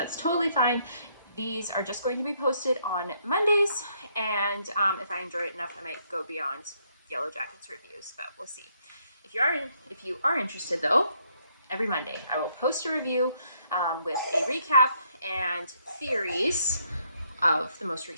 totally fine. These are just going to be posted on Mondays, and if I enjoy it enough, I might go beyond Yellowjackets reviews, but we'll see. If you are interested though, every Monday I will post a review with a recap and theories of the most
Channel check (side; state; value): both; inverted; correlation -0.72